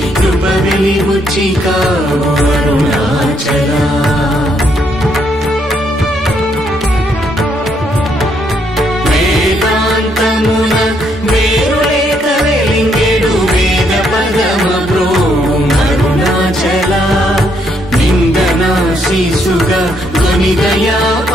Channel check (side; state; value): both; normal; correlation 0.73